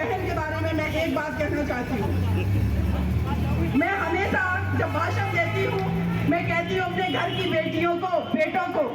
के बारे में मैं एक बात कहना चाहती हूँ। मैं हमेशा जब भाषण देती हूँ मैं कहती हूँ अपने घर की बेटियों को, बेटों को,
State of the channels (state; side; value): identical; both; correlation 1.00